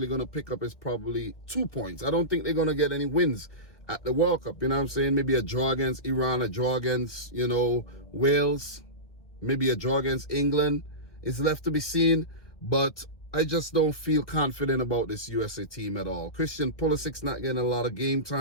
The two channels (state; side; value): late; right; 2.1 ms